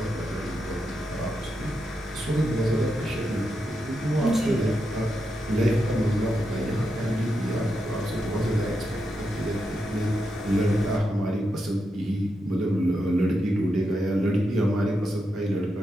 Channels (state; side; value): normal; both; correlation 0.85